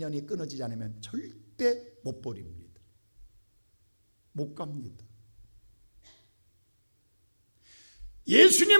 끊어지지 않으면 절대 못 버립니다. 못 갑니다.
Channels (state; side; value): inverted; both; correlation -1.00